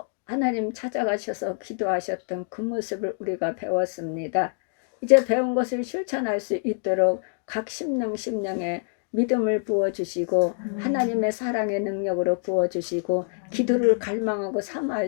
하나님 찾아가셔서 기도하셨던 그 모습을 우리가 배웠습니다. 이제 배운 것을 실천할 수 있도록 각 심령에 믿음을 부어주시고 하나님의 사랑의 능력으로 부어주시고 기도를 갈망하고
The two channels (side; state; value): right; silent; 57 dB below the other